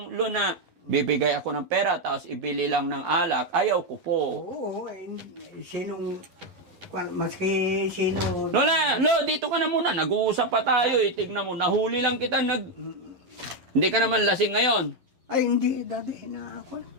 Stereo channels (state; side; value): late; left; 11 ms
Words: Lo na bibigay ako ng pera tapos ibili lang ng alak. Ayaw ko po. Oo, sinong, maski sino. Lola, Lo, dito ka na muna. Nag-uusap pa tayo eh. Tignan mo, nahuli lang kita. Hindi ka naman lasing ngayon. Ay, hindi, dati na ako.